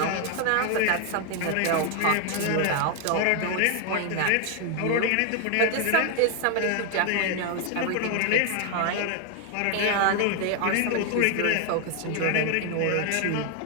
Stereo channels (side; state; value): both; different; correlation 0.01